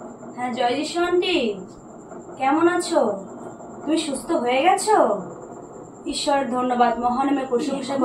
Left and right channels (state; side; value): identical; both; correlation 1.00